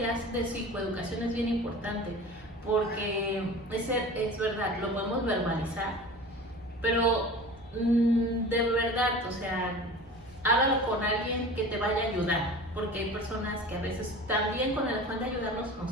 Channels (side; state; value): both; normal; correlation 0.37